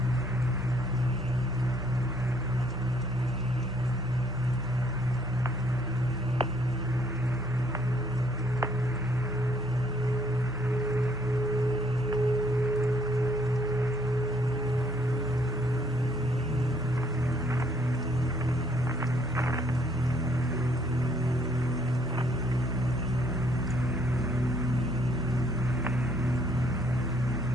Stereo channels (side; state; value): both; normal; correlation 0.66